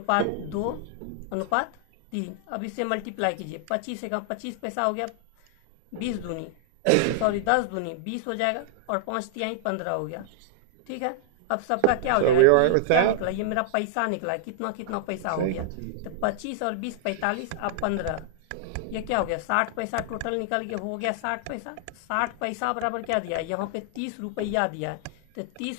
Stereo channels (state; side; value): different; both; correlation 0.00